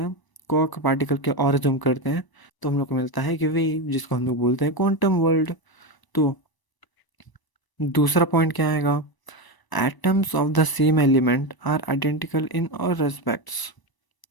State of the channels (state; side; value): late; right; 1.0 ms